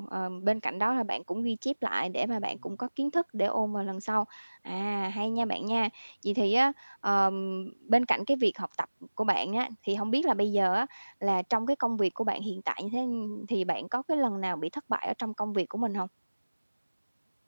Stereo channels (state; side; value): inverted; both; correlation -1.00